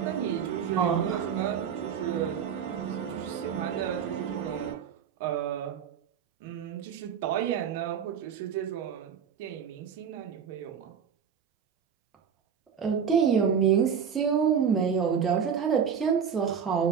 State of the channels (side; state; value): left; quieter; 7.5 dB